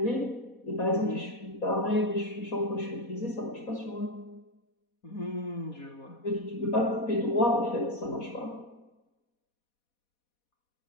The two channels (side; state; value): right; late; 4.1 ms